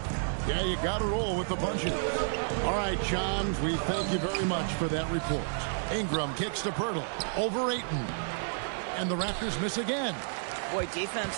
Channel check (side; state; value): left; silent; digital silence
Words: Yeah, you got to roll with the punches. All right, Shams, we thank you very much for that report. Ingram kicks to Pirtle. Over Ayton. And the Raptors miss again. Boy, defense